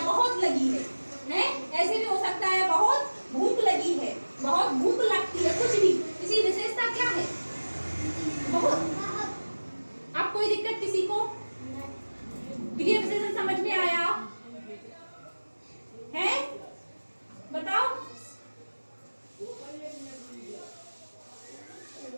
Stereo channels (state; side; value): inverted; both; correlation -1.00